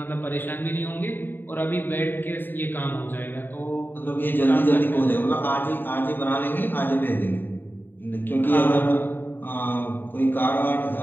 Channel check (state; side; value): late; right; 0.093 ms